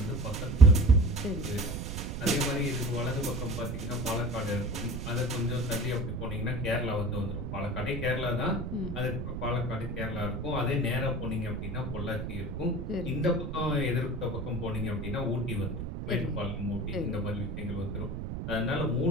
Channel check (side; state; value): right; noise; rumble, 5 dB below the sound